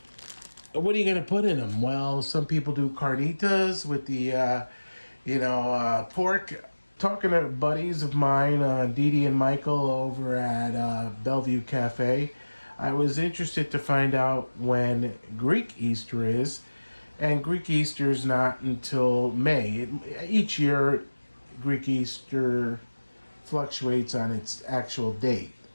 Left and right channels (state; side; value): inverted; both; correlation -1.00